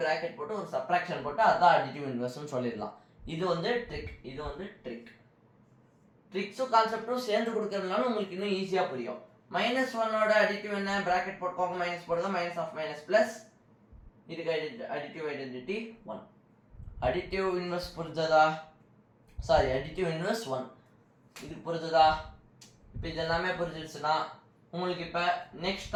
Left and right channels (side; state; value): both; identical; correlation 1.00